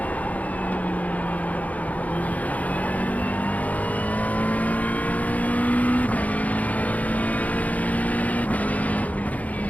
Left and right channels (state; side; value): late; right; 0.073 ms